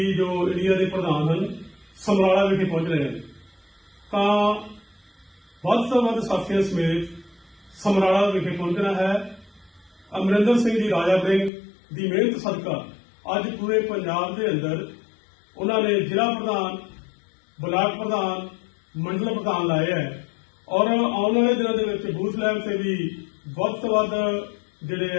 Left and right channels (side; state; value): right; drops out; at 11.5 s